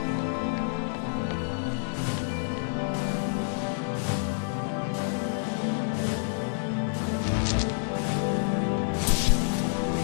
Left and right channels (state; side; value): silent; right; 59 dB below the other